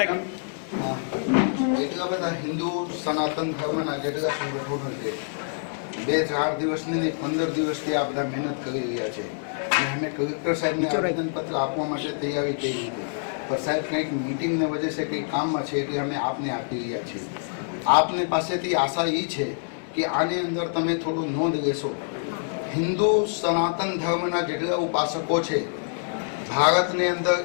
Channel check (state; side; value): silent; right; digital silence